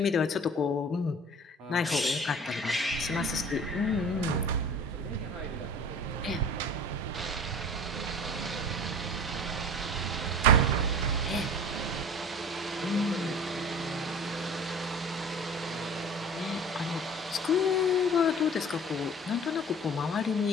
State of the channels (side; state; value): both; normal; correlation 0.42